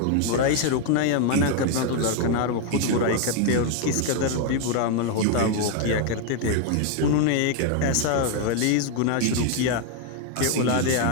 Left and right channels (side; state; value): both; different; correlation 0.01